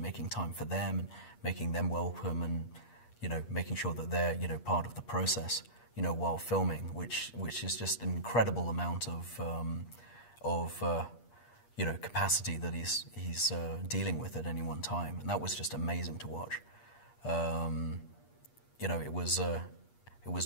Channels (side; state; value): right; late; 8.4 ms